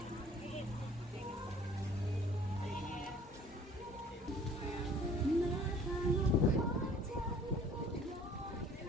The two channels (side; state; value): both; normal; correlation 0.52